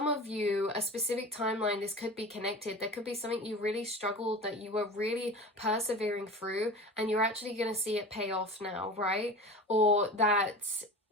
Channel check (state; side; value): normal; both; correlation 0.33